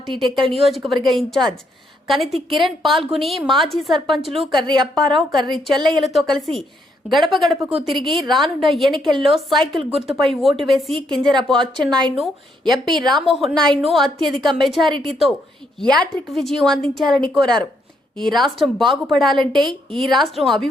టెక్కల్ నియోజకవర్గ ఇన్ఛార్జ్ కనితి కిరణ్ పాల్గొని మాజీ సర్పంచులు కర్రి అప్పారావు, కర్రి చెల్లయ్యలతో కలిసి గడప గడపకు తిరిగి రానున్న ఎన్నికల్లో సైకిల్ గుర్తుపై ఓటు వేసి కింజరాపు అచ్చెన్నాయుడును, ఎంపీ రామ్మోహన్ నాయుడును అత్యధిక మెజారిటీతో యాట్రిక్ విజయం అందించాలని కోరారు. ఈ రాష్ట్రం బాగుపడాలంటే, ఈ రాష్ట్రం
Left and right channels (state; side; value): normal; both; correlation 0.75